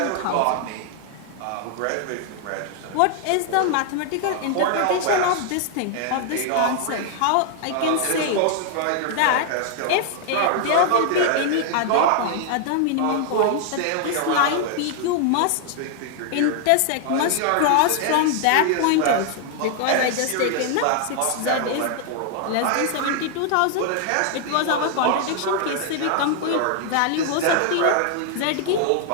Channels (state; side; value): different; both; correlation 0.00